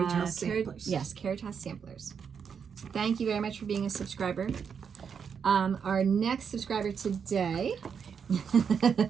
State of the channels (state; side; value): quieter; left; 6.8 dB